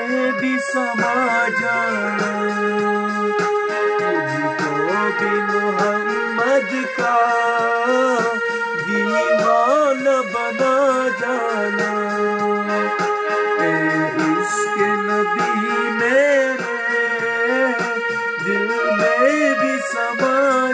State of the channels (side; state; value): both; identical; correlation 1.00